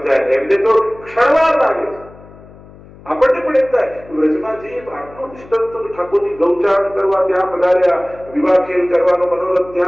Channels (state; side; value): noise; left; hum, 21 dB below the sound